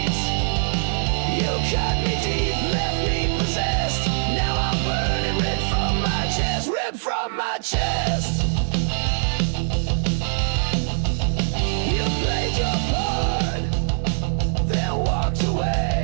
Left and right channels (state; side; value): silent; left; 64 dB below the other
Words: You cut me deep, left me possessed. Now I'm burning, ripped from my chest, ripped from my chest. You played your part, then walked